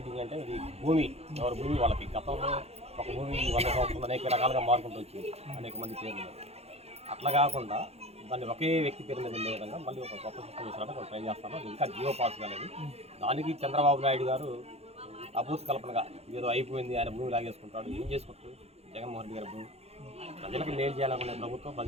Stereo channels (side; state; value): left; late; 0.30 ms